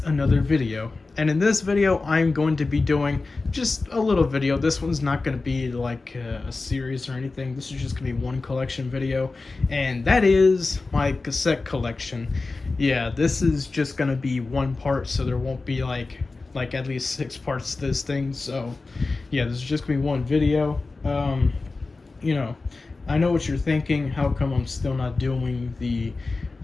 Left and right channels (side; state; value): right; quieter; 3.7 dB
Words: another video. And in this video, I'm going to be doing just a little video. This one's not going to be like a series or anything. This is just going to be one collection video, and that is my cassette collection. Yeah, this is just going to be one part, so there won't be like at least 6 parts to this thing. So, yeah, this is just going to be one video. You know, I know what you're thinking. How come I'm still not doing the